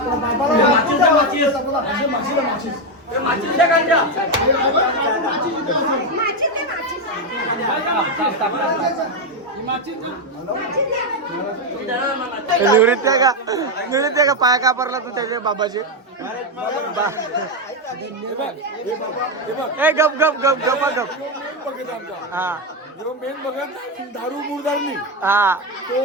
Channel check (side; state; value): both; normal; correlation 0.07